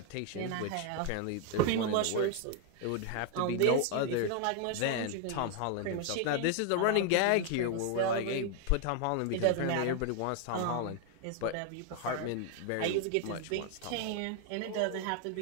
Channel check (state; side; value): different; both; correlation 0.00